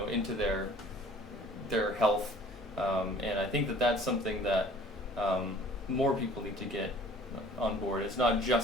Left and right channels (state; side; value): normal; both; correlation 0.51